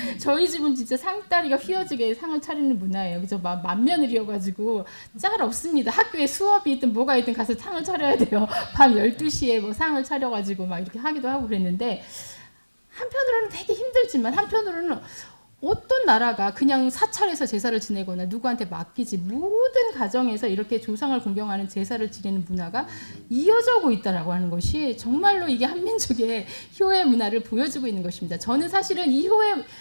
저희 집은 진짜 상다리가 휘어지게 상을 차리는 문화예요. 그래서 맏며느리여가지고 짤 없습니다. 학교에 수업이 있든 뭐가 있든 가서 상을 차려야 돼요. 밤 12시에 뭐 상을 차려가지고 막 이렇게 하기도 하고 그랬는데, 한편으로는 되게 힘들지만 한편으로는 어떤 나라가 그냥 사찰에서 제사를 지내거나 누구한테 맡기지, 모든 가정에서 이렇게 조상을 공경하는 제사를 지내는 문화가 이어져 오고 있다라고 하는 것이 정말로 이게 한민족의 효의 문화를 보여주고 있는 것입니다. 저는 사실은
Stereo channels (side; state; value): both; inverted; correlation -1.00